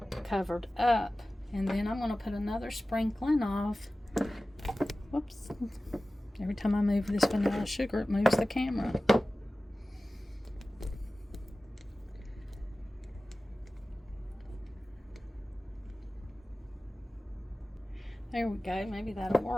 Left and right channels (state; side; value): normal; both; correlation 0.96